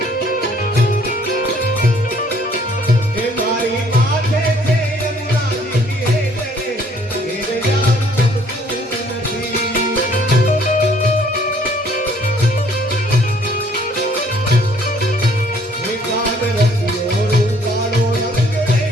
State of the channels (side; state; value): both; normal; correlation 0.61